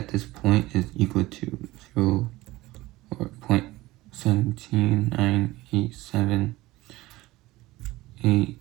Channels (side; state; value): left; quieter; 18.6 dB